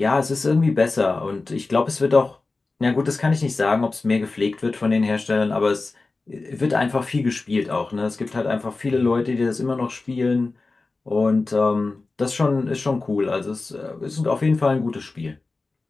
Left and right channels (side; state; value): right; quieter; 3.6 dB